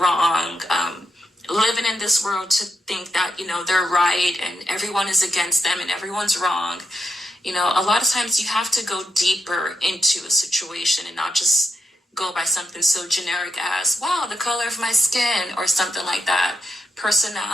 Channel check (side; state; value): both; normal; correlation 0.84